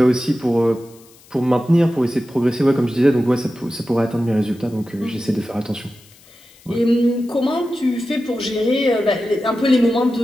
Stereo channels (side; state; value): left; noise; hiss, 26 dB below the sound